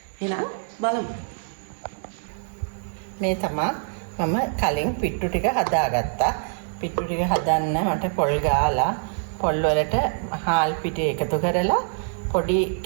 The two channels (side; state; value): left; silent; digital silence